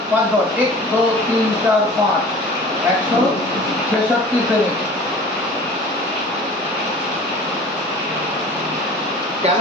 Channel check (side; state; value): both; normal; correlation 0.42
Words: 5 ঘর 1 2 3 4 5 166 সেমি। কেন